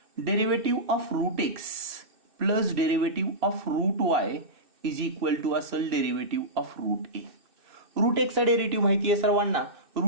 Derivative of root x plus derivative of root y is equal to असेल derivative of root a. Root एक्सचा derivative माहिती आहे सर्वांना.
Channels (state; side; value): late; left; 2.6 ms